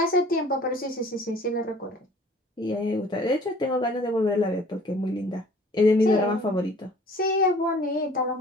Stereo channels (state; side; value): normal; both; correlation 0.51